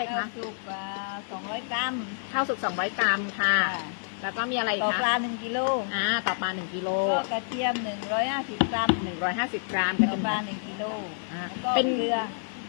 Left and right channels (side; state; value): right; silent; digital silence